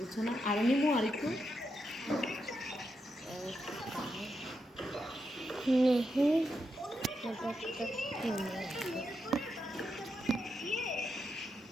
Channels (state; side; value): normal; both; correlation 0.84